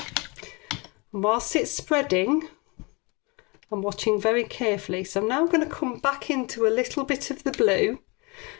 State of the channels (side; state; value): right; quieter; 28.6 dB